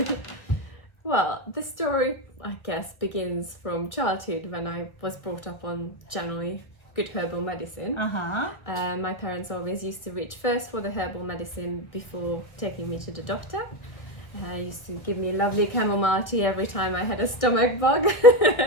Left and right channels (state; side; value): late; right; 1.2 ms